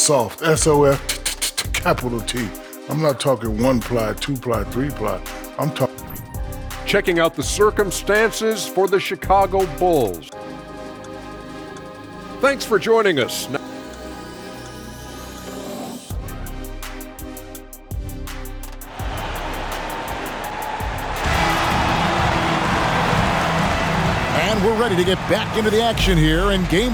SOF, capital T. I'm not talking 1-ply, 2-ply, 3-ply. I'm talking. Checking out the circumstances for the Chicago Bulls. Thanks for joining us. And we're ready to get back into the action here in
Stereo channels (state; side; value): identical; both; correlation 1.00